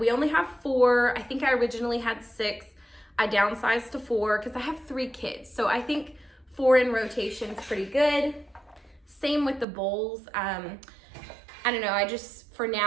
only have 4. I think I originally had 6. I downsized to 4 because I have 3 kids. So I think 4 in rotation is pretty good. Same with the bowls. I don't know, I just, for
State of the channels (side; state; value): left; drops out; at 9.7 s